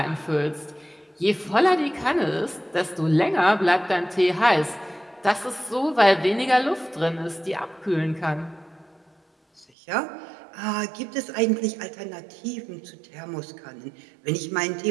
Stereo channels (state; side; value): drops out; left; at 9.7 s